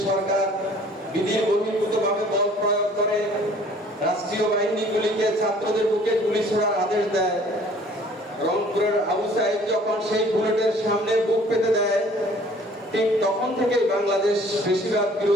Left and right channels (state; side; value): normal; both; correlation 0.53